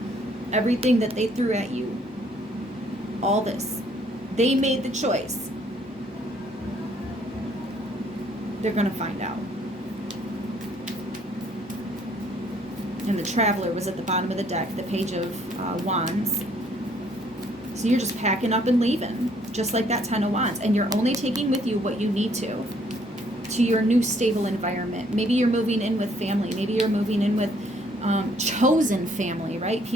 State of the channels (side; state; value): both; normal; correlation 0.64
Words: Everything that they threw at you, all this, they made the choice. They're going to find out. And the Traveler was at the bottom of the deck, the Page of Wands. So you're just packing up and leaving, just like that 10 of Wands. And you're only taking with you what you need to your new stable environment. Maybe you're moving in with family. Maybe you're moving in with chosen family, right?